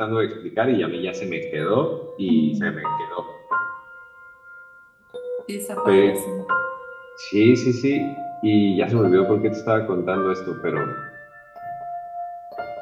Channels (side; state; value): both; identical; correlation 1.00